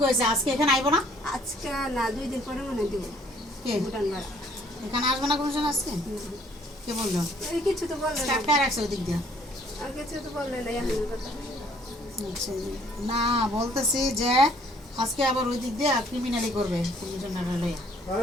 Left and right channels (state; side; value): normal; both; correlation 0.61